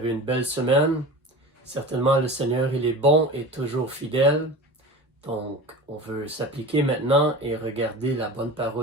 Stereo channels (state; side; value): normal; both; correlation 0.33